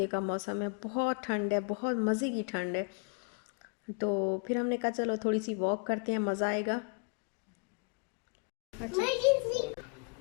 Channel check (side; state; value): right; quieter; 38.3 dB